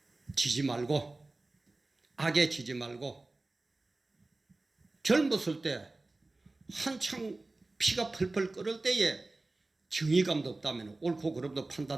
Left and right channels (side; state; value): left; quieter; 3.1 dB